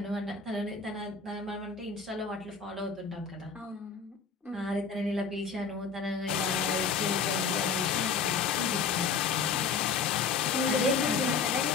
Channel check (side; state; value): right; quieter; 5.4 dB